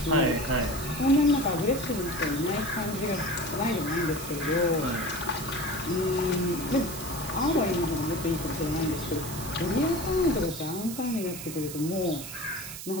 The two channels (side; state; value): right; noise; hiss, 10 dB below the sound